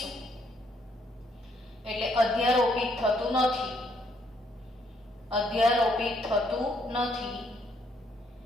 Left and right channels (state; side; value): normal; both; correlation 0.70